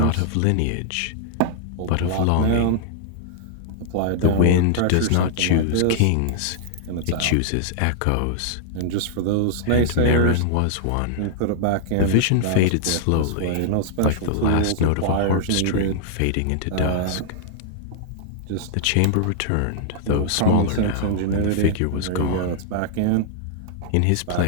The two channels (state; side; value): different; both; correlation -0.01